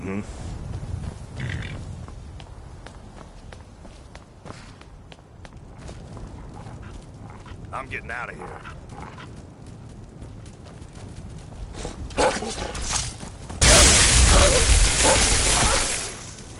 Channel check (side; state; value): both; identical; correlation 1.00